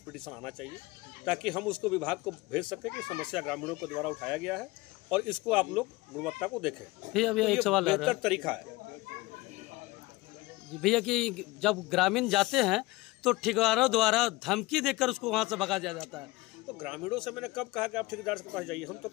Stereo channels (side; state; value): right; quieter; 21.2 dB